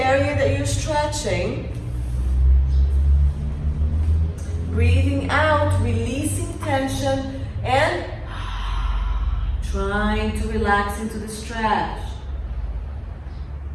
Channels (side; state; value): both; identical; correlation 1.00